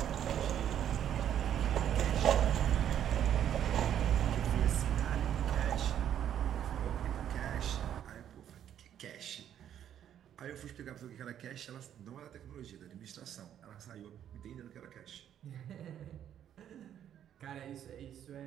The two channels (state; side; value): quieter; left; 10.1 dB